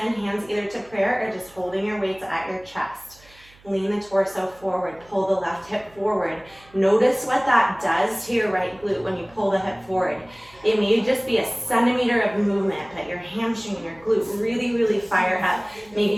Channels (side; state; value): right; noise; hum, 27 dB below the sound